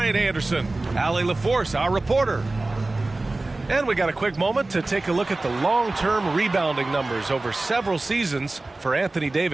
Anderson. Allie LaForce, our reporter. And we got a quick moment to take a look at the long-term rebounding numbers over several seasons for Anthony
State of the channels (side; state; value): left; quieter; 3.1 dB